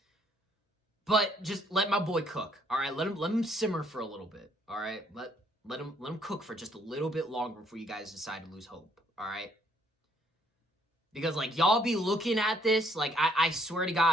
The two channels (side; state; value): both; normal; correlation 0.66